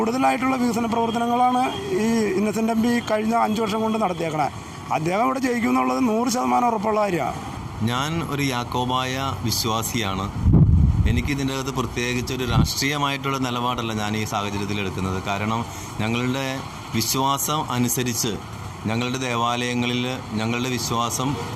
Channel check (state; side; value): identical; both; correlation 1.00